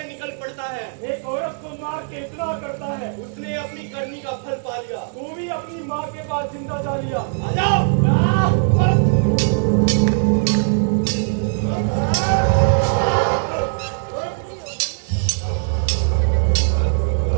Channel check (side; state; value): left; silent; digital silence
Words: निकल पड़ता है? एक औरत को मार के इतना करता है, उसने अपनी करनी का फल पा लिया। तू भी अपनी माँ के पास जिंदा जा लिया। आ जाओ।